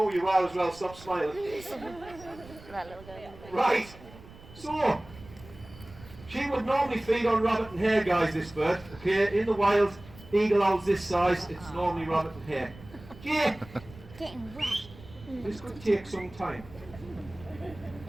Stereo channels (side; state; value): right; noise; rumble, 19 dB below the sound